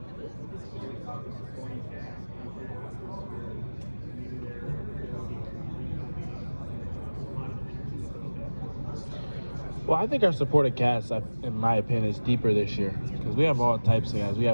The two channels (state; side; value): inverted; both; correlation -1.00